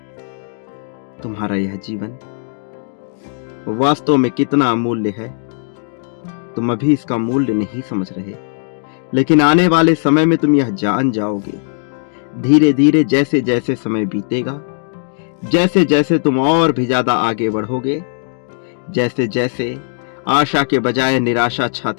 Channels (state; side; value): silent; right; digital silence